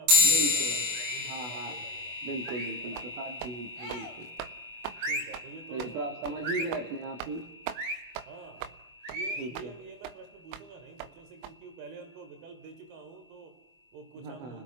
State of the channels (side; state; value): left; late; 24 ms